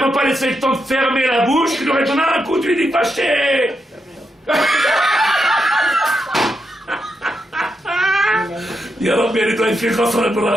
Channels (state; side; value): normal; both; correlation 0.84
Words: pas laissé le temps de fermer la bouche, tu lui aurais donné un coup, tu lui dis, fâché. يا رب يعني طيب في خسارة